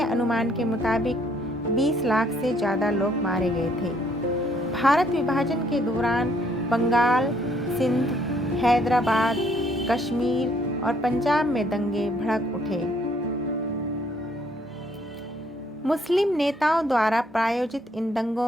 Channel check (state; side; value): normal; both; correlation 0.66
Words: अनुमान के मुताबिक 20 लाख से ज़्यादा लोग मारे गए थे। भारत विभाजन के दौरान बंगाल, सिंध, हैदराबाद, कश्मीर और पंजाब में दंगे भड़क उठे। मुस्लिम नेताओं द्वारा प्रायोजित इन